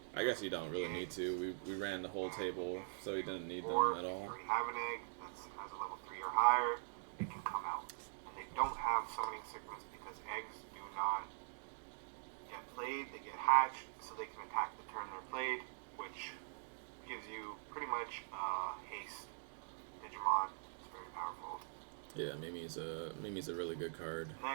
I guess you don't really need to. We ran the whole table, so he didn't need them at all. If you already have an egg that has a level 3 or higher, it can come out. And they don't have summoning sickness because eggs do not get played. They get hatched, so they can attack the turn they're played, which gives you pretty much haste Digimon. It's very powerful. Yeah, Mimi's a really good card.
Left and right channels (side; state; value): left; silent; digital silence